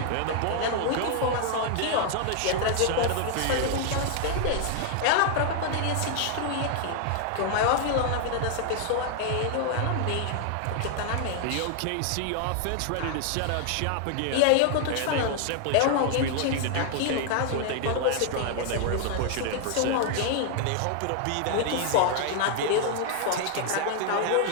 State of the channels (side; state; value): both; different; correlation 0.00